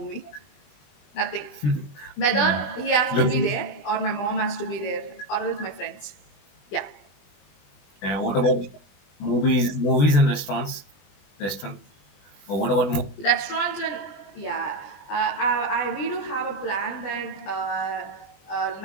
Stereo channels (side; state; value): right; late; 21 ms